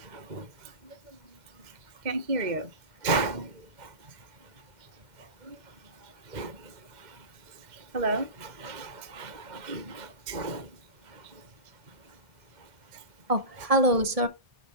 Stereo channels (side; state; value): left; late; 2.0 ms